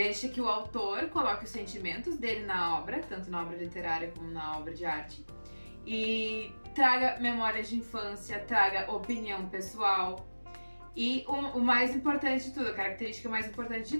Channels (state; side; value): inverted; both; correlation -1.00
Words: que o autor coloque os sentimentos dele na obra, tanto na obra literária como na obra de arte, e traga memórias de infância, traga opinião pessoal. E o mais importante de tudo, a característica mais importante de